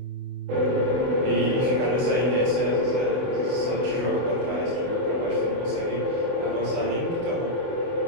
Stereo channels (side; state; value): left; late; 24 ms